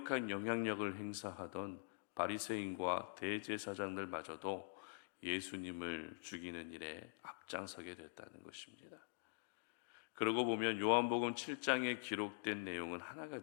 영향력을 행사하던 바리새인과 대제사장들마저도 예수님을 죽이는 일에 앞장서게 됐다는 것입니다. 그러고 보면 요한복음 7장에 기록된 내용은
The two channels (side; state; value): right; silent; digital silence